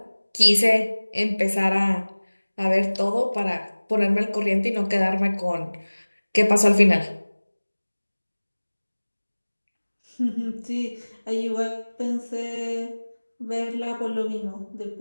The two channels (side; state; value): both; inverted; correlation -1.00